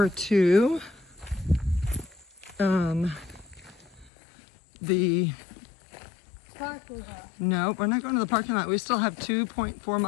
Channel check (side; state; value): right; drops out; at 4.1 s